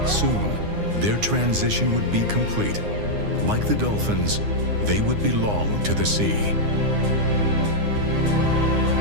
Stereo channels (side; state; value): left; late; 9.7 ms